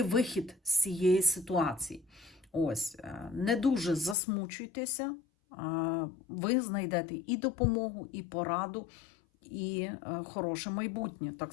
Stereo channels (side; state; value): right; drops out; at 4.2 s